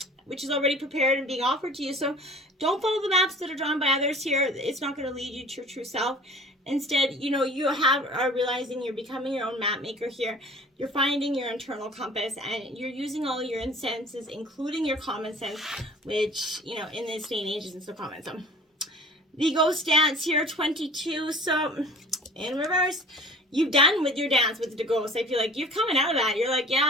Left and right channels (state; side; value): normal; both; correlation 0.45